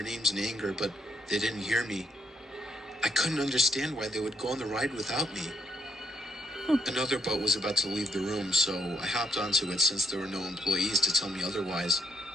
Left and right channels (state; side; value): normal; both; correlation 0.73